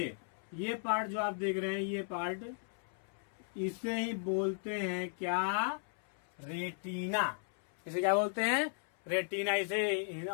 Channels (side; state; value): right; silent; 54 dB below the other